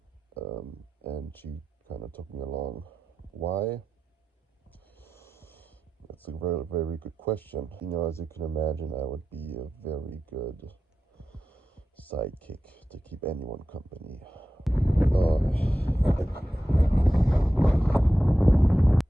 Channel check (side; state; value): both; normal; correlation 0.92